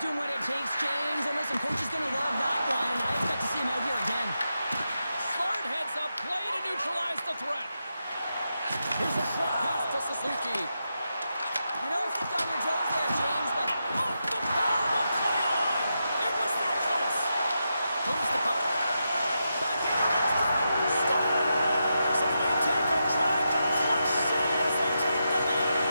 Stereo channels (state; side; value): inverted; both; correlation -0.87